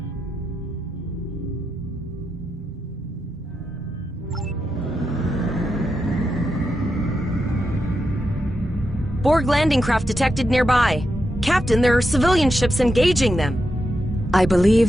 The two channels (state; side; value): normal; both; correlation 0.86